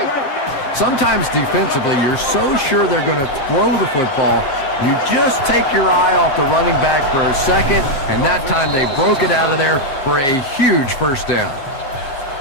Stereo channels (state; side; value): late; right; 7.4 ms